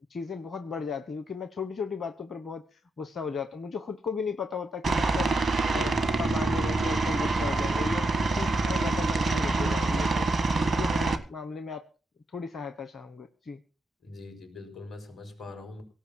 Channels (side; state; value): both; normal; correlation 0.82